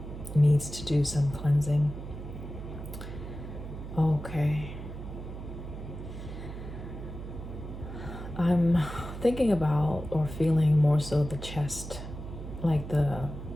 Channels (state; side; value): noise; right; hum, 9 dB below the sound